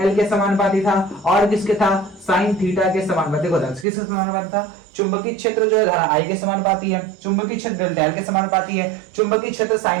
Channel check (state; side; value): drops out; left; at 3.9 s